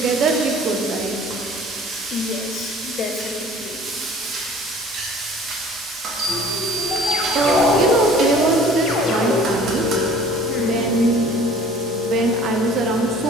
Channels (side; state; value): both; normal; correlation 0.49